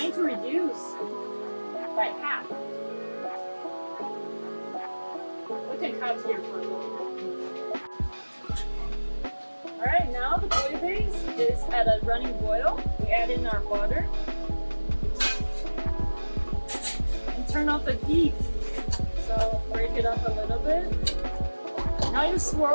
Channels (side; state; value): both; inverted; correlation -1.00